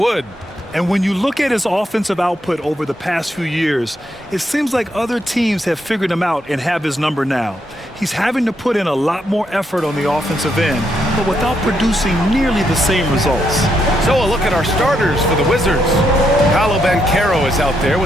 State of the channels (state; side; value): normal; both; correlation 0.78